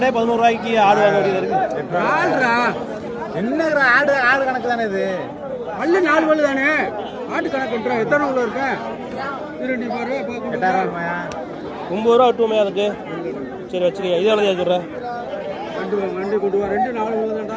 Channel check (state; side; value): identical; both; correlation 1.00